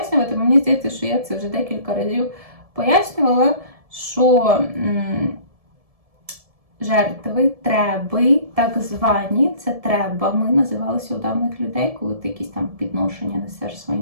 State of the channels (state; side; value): late; left; 1.7 ms